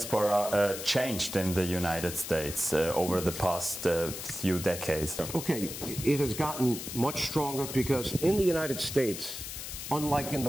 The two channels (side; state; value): left; noise; hiss, 8 dB below the sound